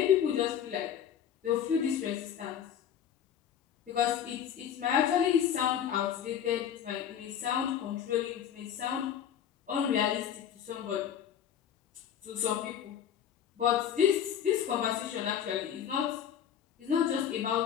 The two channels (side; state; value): right; quieter; 9.2 dB